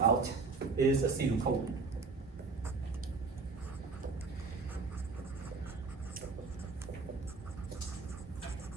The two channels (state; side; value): quieter; left; 4.3 dB